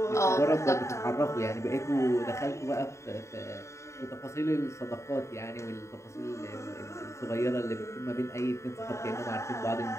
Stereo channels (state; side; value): late; right; 0.14 ms